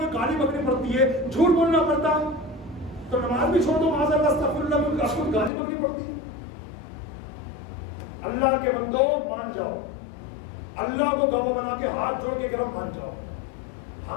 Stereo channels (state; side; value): drops out; right; at 5.5 s